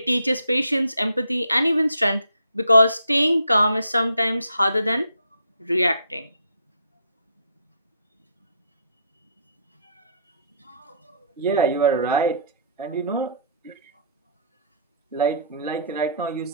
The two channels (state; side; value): inverted; both; correlation -0.63